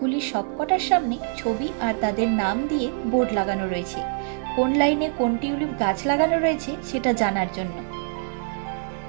সবকটার সামনে ছবি আর তাদের নাম দিয়ে বোর্ড লাগানো রয়েছে, কোন লাইনে কোন টিউলিপ গাছ লাগানো রয়েছে সেটা জানার জন্য।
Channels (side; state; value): left; silent; 62 dB below the other